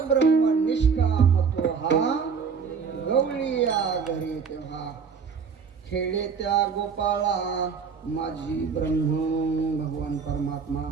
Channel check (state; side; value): quieter; left; 5.9 dB